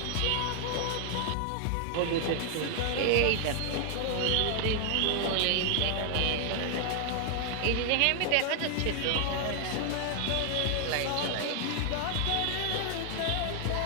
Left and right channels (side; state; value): both; different; correlation 0.00